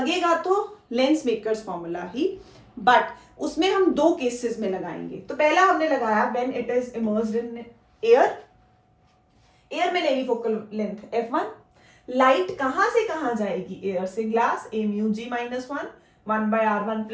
तो lens makers formula he, but उसमें हम दो केसेस में लगाएंगे। तो पहला हमने लगाया when it is immersed in air, air में लेनी फोकल लेंथ f1, लाइट कहां से कहां जाएगी, एयर से glass, a mu g minus 1 by r1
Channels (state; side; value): identical; both; correlation 1.00